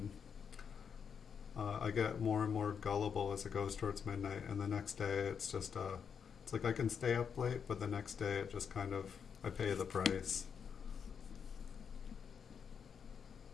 I get more and more gullible as it goes towards midnight, and the next day it's just it's like I can stay up late, but the next day it just kind of, I pay the price.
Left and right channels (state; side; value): quieter; right; 6.9 dB